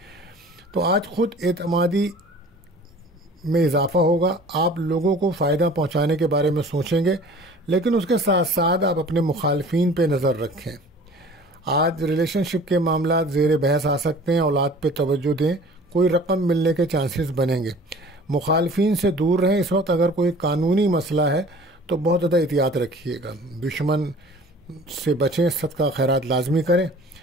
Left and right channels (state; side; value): normal; both; correlation 0.46